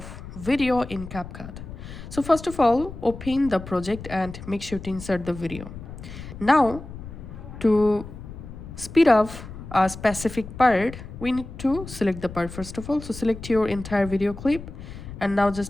video in CapCut. So first of all, open the project and make sure to insert the video. Now, to speed up a specific part, we need to select the part first of all. So select your entire video clip and now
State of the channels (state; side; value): noise; left; rumble, 12 dB below the sound